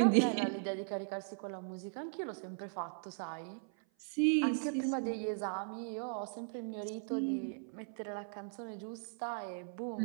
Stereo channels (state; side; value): silent; left; 52 dB below the other